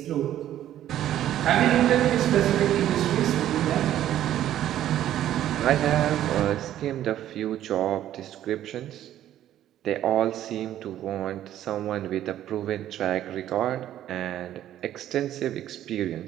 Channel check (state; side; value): quieter; left; 12.1 dB